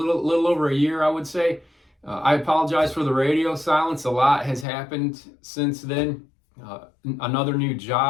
over a year, I would say. I apologize for the radio silence. A lot has happened since then. Another new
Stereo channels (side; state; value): right; drops out; at 4.7 s